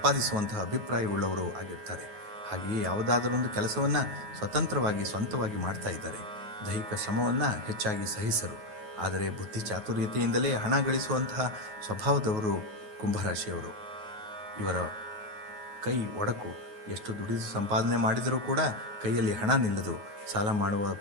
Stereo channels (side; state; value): left; late; 9.4 ms